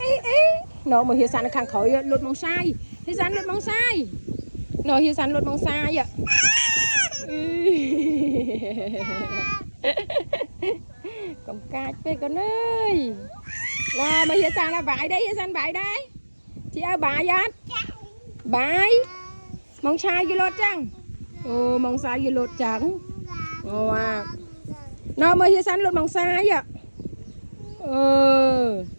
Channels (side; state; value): both; inverted; correlation -1.00